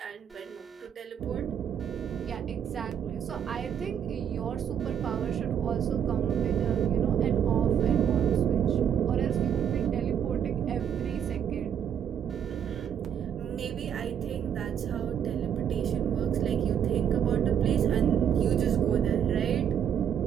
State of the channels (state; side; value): quieter; left; 8.6 dB